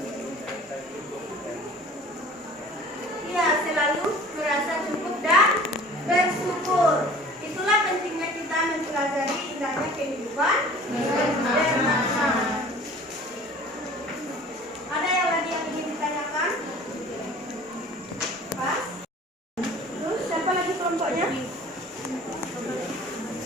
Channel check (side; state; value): both; normal; correlation 0.46